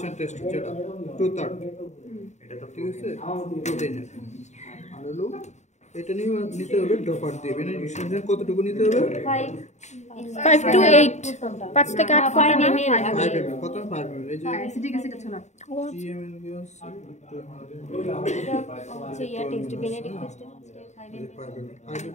টেস্ট যেটা 2/3 এটা তো ঠিক আছে প্রোটিনের আর হলো এটা নিয়ে নিতে হবে ড্রপার দিয়ে বেনিফিশিয়াল কতটুকু নিতে হবে 5 to 8 5 থেকে 8 5 না ml কত 5 ml এই যে অ্যাসিডিক অ্যাসিড আছে না GML গ্যাস আচ্ছা ইয়া টেস্ট বেনেডিক টেস্ট 5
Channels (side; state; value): right; late; 0.34 ms